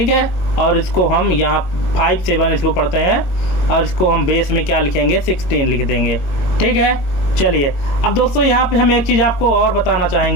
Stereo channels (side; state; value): right; late; 21 ms